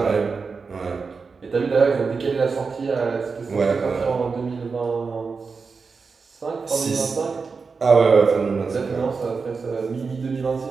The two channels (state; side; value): quieter; left; 4.9 dB